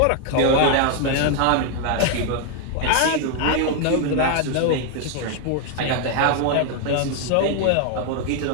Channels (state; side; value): different; both; correlation 0.01